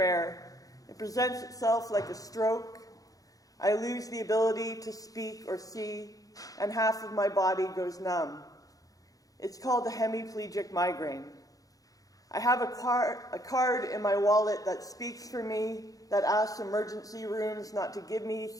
It presents itself like a stroke. I lose the ability to speak or see, and half of my body goes numb. It's called a hemiplegic migraine. I have a card in my wallet that speaks for me, that asks emergency rooms not to give me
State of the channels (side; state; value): right; late; 0.17 ms